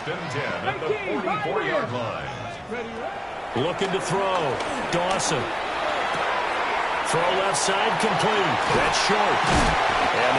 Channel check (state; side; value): identical; both; correlation 1.00